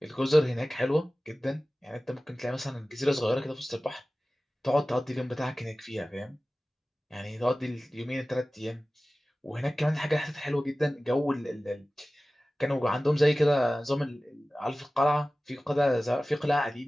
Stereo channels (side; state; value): both; normal; correlation 0.97